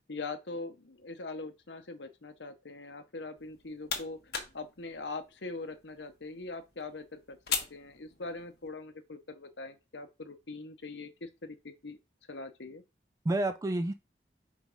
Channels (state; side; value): normal; both; correlation 0.33